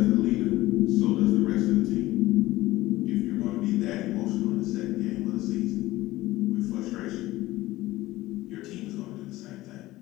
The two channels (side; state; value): right; quieter; 17.5 dB